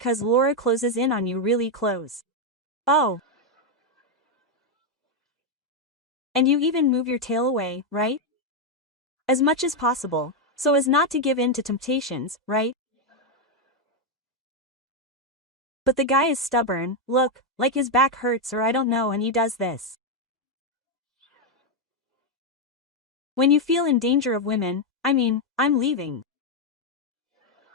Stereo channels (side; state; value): both; normal; correlation 0.02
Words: Laura closes in on you really close. Oh. And you even move your tail away, right? As much as possible, so as not to give in to temptations, right? But the guy is stubborn, look, like his back hurts or I don't know, and he does this. When you feel in danger of women, I'm leaving.